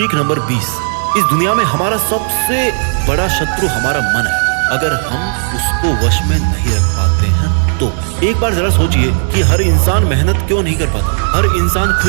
नंबर 20, इस दुनिया में हमारा सबसे बड़ा शत्रु हमारा मन है। अगर हम उसको वश में नहीं रख पाते हैं तो एक बार जरा सोचिए कि हर इंसान मेहनत क्यों नहीं कर पाता, हर इंसान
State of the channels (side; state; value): left; silent; digital silence